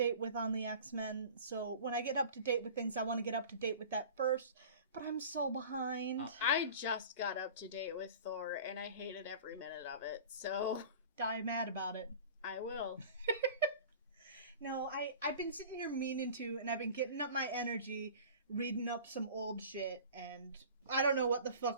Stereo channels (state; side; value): inverted; both; correlation -0.40